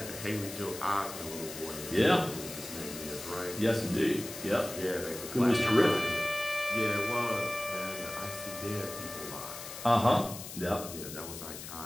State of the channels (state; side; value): noise; left; hiss, 10 dB below the sound